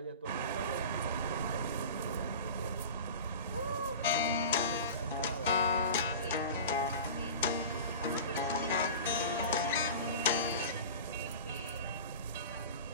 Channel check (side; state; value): both; inverted; correlation -0.34